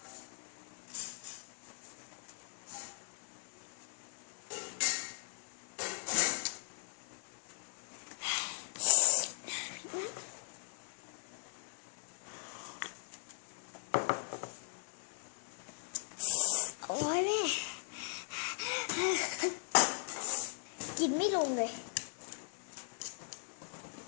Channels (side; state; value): right; silent; digital silence